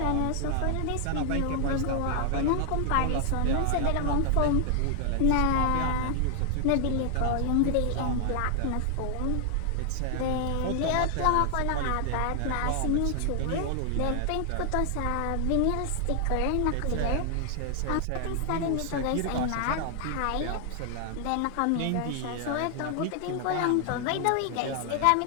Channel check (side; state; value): both; different; correlation 0.00